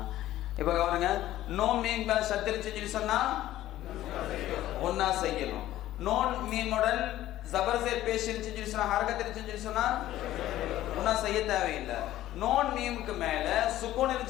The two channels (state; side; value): quieter; right; 14.1 dB